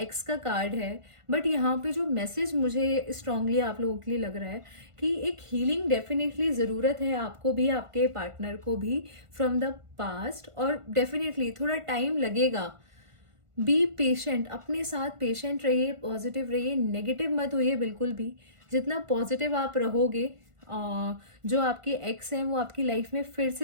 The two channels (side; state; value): left; late; 1.5 ms